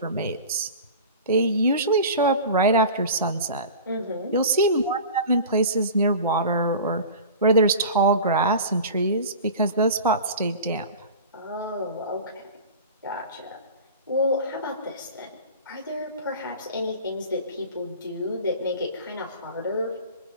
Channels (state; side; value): inverted; both; correlation -0.36